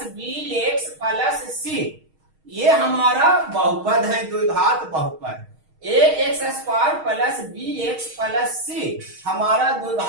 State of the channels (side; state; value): left; late; 6.4 ms